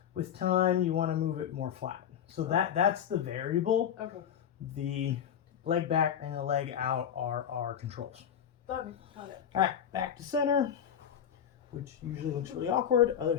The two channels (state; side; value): quieter; right; 9.0 dB